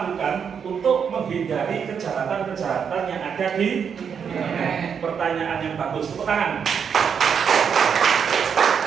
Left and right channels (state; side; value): quieter; left; 7.1 dB